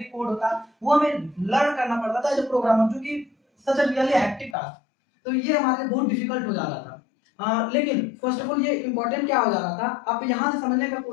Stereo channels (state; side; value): drops out; right; at 4.5 s